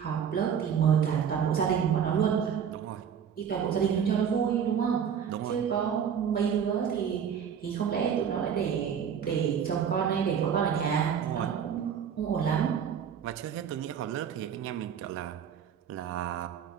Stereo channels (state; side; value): quieter; left; 7.9 dB